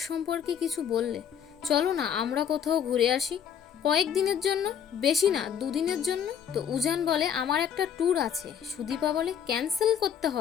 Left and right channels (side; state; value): right; quieter; 8.3 dB